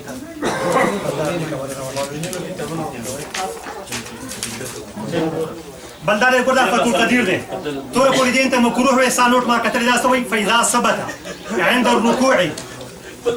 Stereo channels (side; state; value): both; identical; correlation 1.00